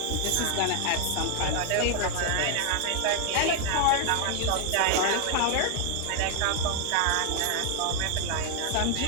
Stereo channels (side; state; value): both; different; correlation 0.00